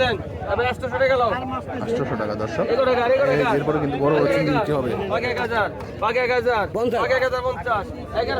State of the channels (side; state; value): both; identical; correlation 1.00